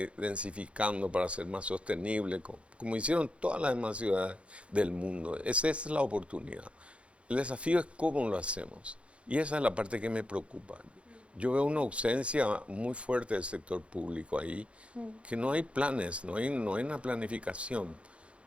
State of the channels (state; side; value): late; left; 0.061 ms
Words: densificando para ser más sostenible, como hicieron todas las demás ciudades del mundo. Esa es la oportunidad. El desafío es cómo lo hacemos. Y esa es la parte que me preocupa. Yo veo una ausencia muy fuerte del sector público ahí, que no hay planes, no hay una planificación.